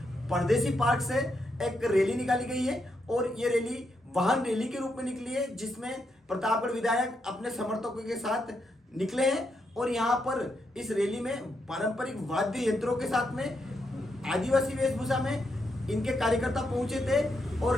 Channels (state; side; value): normal; both; correlation 0.81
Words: परदेसी पार्क से एक रैली निकाली गई है और ये रैली वाहन रैली के रूप में निकली है, जिसमें प्रतापगढ़ विधायक अपने समर्थकों के साथ निकले हैं। और यहाँ पर इस रैली में पारंपरिक वाद्य यंत्रों के साथ में आदिवासी वेशभूषा में इनके कार्यकर्ता पहुंचे थे और